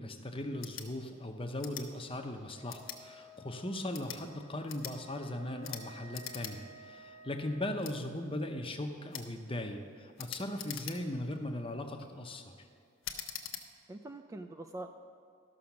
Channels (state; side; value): normal; both; correlation 0.61